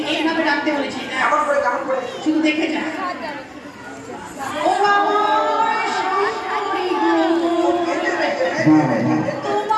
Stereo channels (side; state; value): both; identical; correlation 1.00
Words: এইভাবে ডাকতে বলেছি। দেখ, কেমন করে কেমন করে। শুধু দেখে যা। ও আমার শাশুড়ি গো,